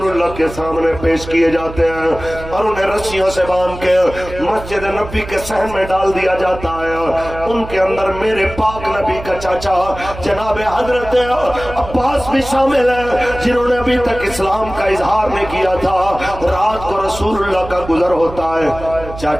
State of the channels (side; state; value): right; noise; hum, 13 dB below the sound